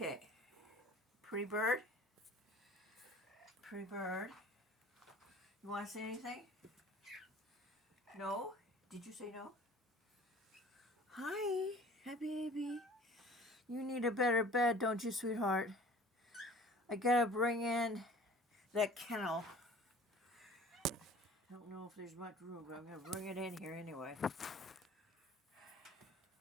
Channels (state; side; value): normal; both; correlation 0.47